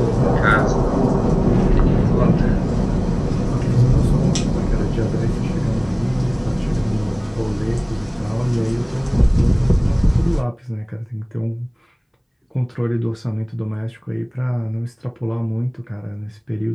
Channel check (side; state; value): both; identical; correlation 1.00